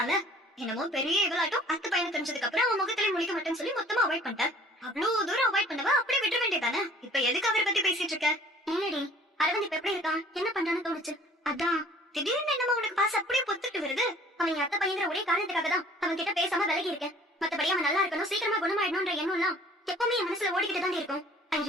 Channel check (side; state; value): both; normal; correlation 0.52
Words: என்னமோ பெரிய இவளாட்டம் அத்து பையனை தெரிஞ்சதுக்கு அப்புறம் அவன் முகத்திலே முழிக்க மாட்டேன்னு சொல்லி மொத்தமா அவாய்ட் பண்ணிட்டேன். அவ்வளவு தூரம் அவாய்ட் பண்ணவா அப்படியே விட்டுற வேண்டியதானே? இப்ப எதுக்கு அவரை பத்தி பேசிட்டு இருக்க? இல்லடி அரவிந்த் இப்ப எப்படி இருக்கான் என்ன பண்றான்னு தோணுச்சு. அதான் திடீர்னு என்னமோ உனக்கு பாச அப்படியே பொத்துட்டு வருது. அவன் என் அத்தை பையங்கிற ஒரே காரணத்துக்காக தான் அவன் கிட்ட பேசாம விலகி இருக்கேன். மத்தபடி அவன் நல்லா இருக்கணும் சீக்கிரமா குணமாயிடணும்ன்ற எண்ணம் எல்லாம் எப்பவுமே என் மனசுல ஓடிக்கிட்டு தான் இருக்கும். I